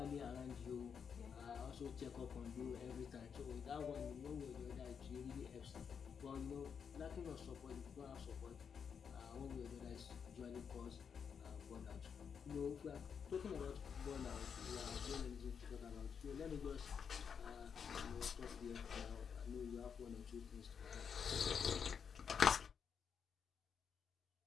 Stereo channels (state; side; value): quieter; right; 6.8 dB